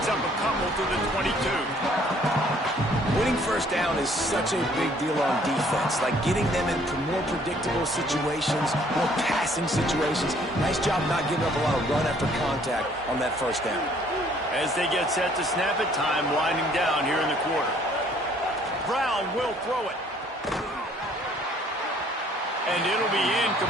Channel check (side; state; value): both; normal; correlation 0.60